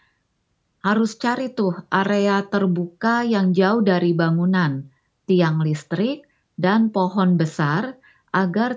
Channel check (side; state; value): both; identical; correlation 1.00